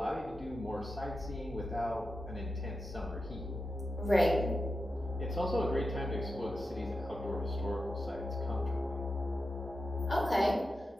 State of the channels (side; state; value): both; normal; correlation 0.90